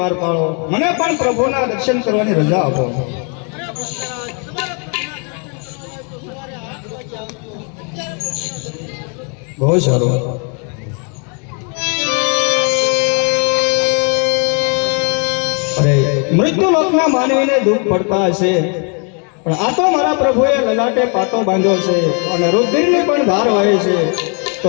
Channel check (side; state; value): right; quieter; 37.6 dB